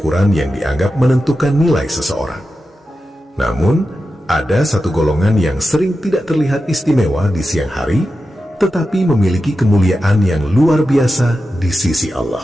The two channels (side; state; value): both; normal; correlation 0.91